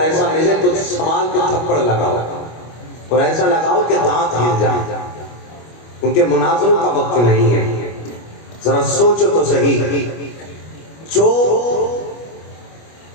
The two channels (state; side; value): late; right; 25 ms